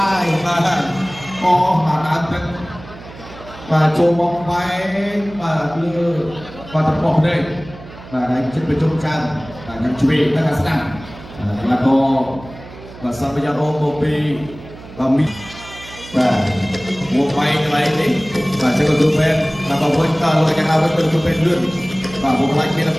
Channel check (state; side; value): noise; right; hum, 17 dB below the sound